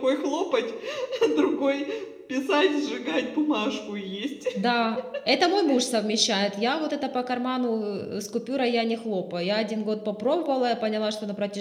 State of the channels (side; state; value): both; identical; correlation 1.00